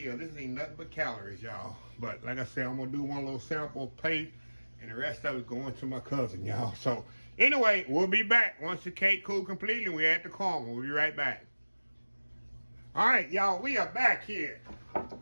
This ain't nothing but calories, y'all. But like I said, I'm gonna do one little sample plate, and the rest of it going to my cousin, y'all. So anyway, we'll be back once the cake cool completely. We add the caramel. We'll be right back. All right, y'all, we are back here. All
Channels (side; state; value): both; inverted; correlation -1.00